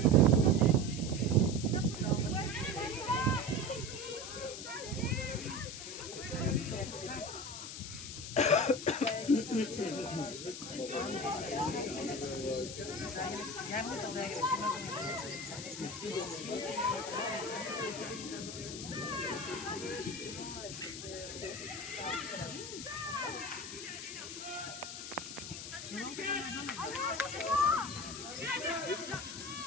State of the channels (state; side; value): noise; left; hiss, 8 dB below the sound